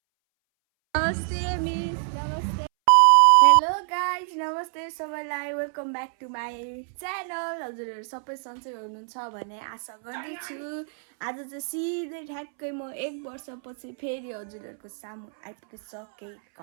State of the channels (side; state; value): left; silent; 61 dB below the other